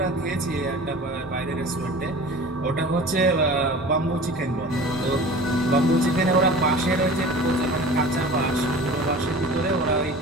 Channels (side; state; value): both; normal; correlation 0.39